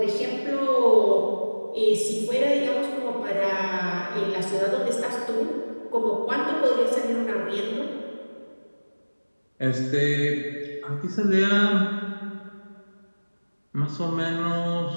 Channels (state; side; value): inverted; both; correlation -1.00